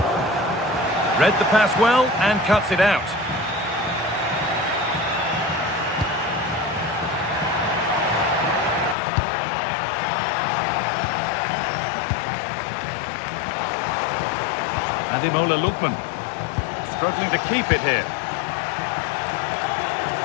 Read the pass well and cuts it out. Ademola Lookman struggling to keep it here.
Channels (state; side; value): drops out; right; at 9.0 s